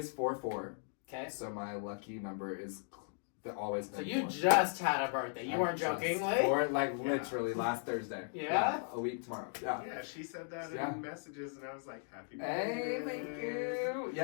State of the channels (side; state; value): right; silent; 53 dB below the other